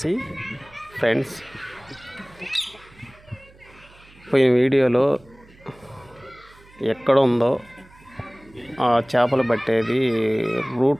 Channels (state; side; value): noise; right; hum, 26 dB below the sound